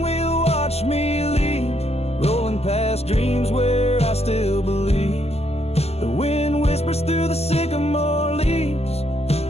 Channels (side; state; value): right; late; 0.30 ms